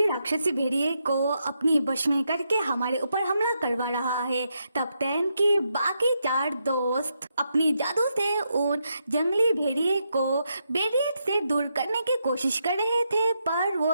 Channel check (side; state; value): both; inverted; correlation -0.81